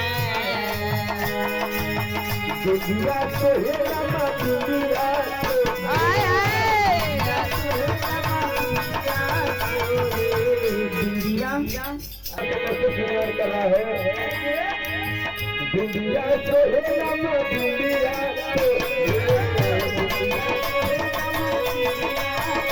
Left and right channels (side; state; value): both; identical; correlation 1.00